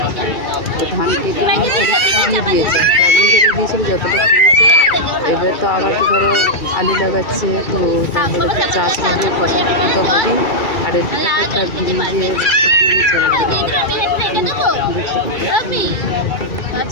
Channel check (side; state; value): right; late; 2.3 ms